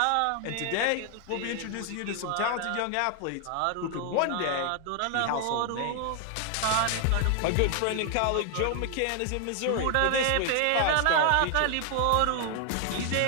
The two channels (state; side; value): different; both; correlation 0.00